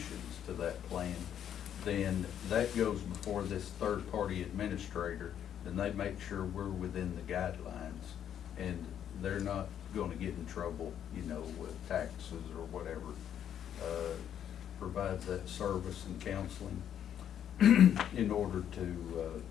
to that plan, then that goes before this third-party administrator, and they make sure we're within the guidelines, and they're not going to get in trouble, you know, with taxes or whatever. Provides that service and counseling in order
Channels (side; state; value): right; quieter; 9.6 dB